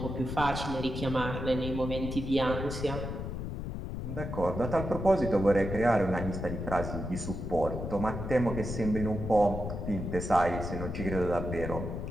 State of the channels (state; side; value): noise; left; rumble, 5 dB below the sound